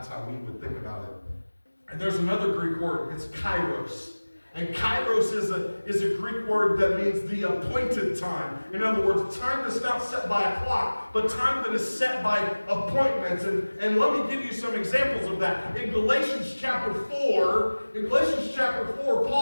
how we would think about it. And there's another Greek word, it's kairos. And kairos is a Greek word that means the appointed time. In other words, time that's not set by a clock, but time that is set by appointments. And let me give you some examples of that. In Galatians chapter 4,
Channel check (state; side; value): inverted; both; correlation -1.00